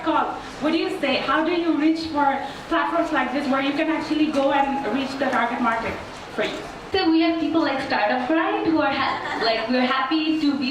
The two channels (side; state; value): both; identical; correlation 1.00